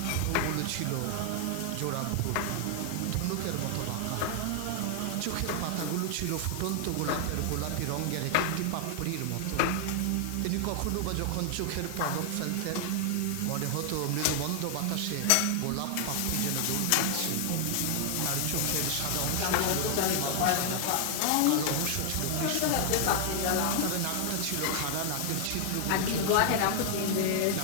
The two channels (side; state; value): both; different; correlation 0.00